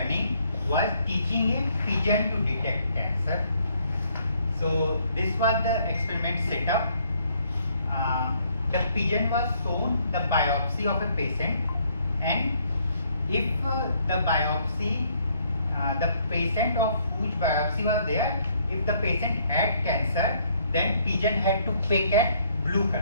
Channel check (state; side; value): inverted; both; correlation -0.67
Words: was teaching a pigeon to detect cancer. So this was the experiment setup. The pigeon was shown the biopsy of a patient, and if the biopsy, the patient of whose biopsy was there, if the patient had cancer, then pigeon had to pick at blue